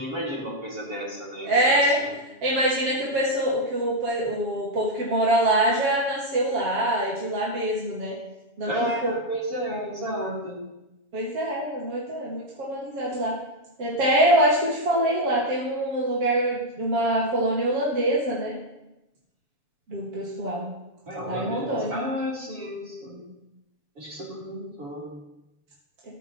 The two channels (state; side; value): late; left; 7.2 ms